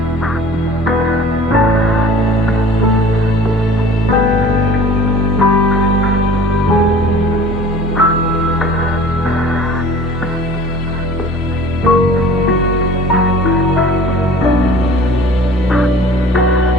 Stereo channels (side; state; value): both; normal; correlation 0.45